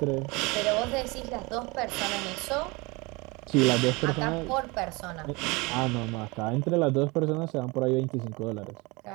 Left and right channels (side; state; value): left; quieter; 25.8 dB